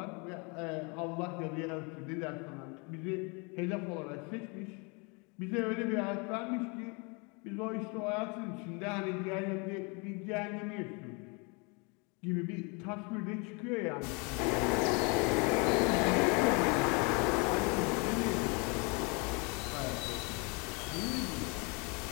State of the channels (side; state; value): right; quieter; 31.7 dB